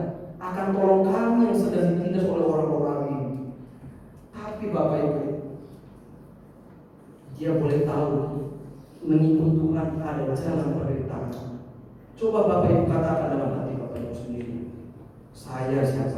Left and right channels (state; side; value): identical; both; correlation 1.00